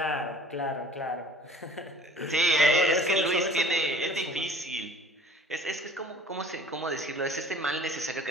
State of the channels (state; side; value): normal; both; correlation 0.49